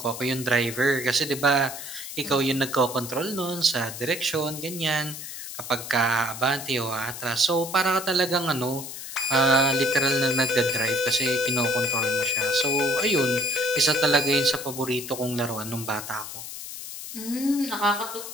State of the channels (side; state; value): left; noise; hiss, 9 dB below the sound